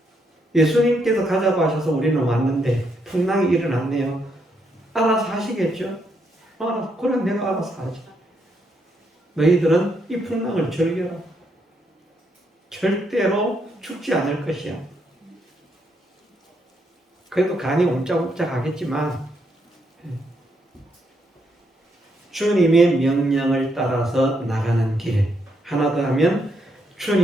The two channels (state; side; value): normal; both; correlation 0.77